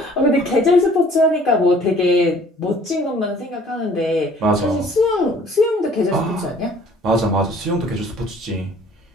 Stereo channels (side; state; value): both; normal; correlation 0.55